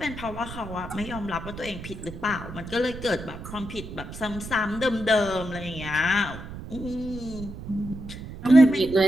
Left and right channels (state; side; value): noise; right; rumble, 11 dB below the sound